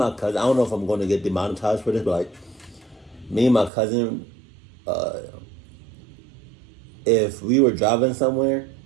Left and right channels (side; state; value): left; drops out; at 3.7 s